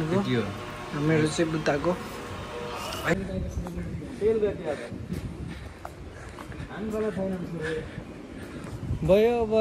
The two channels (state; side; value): identical; both; correlation 1.00